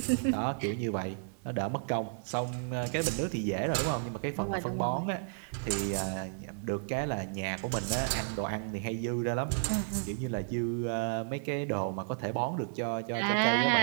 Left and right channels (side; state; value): left; silent; digital silence